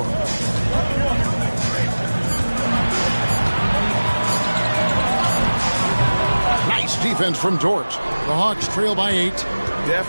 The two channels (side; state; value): both; inverted; correlation -1.00